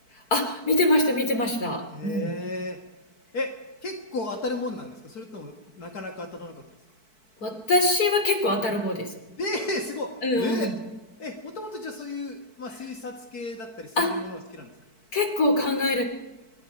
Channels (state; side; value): late; right; 4.6 ms